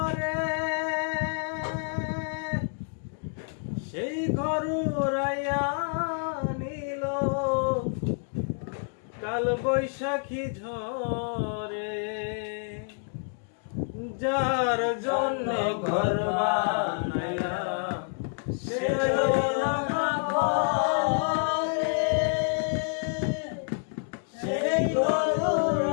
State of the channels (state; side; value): silent; right; 59 dB below the other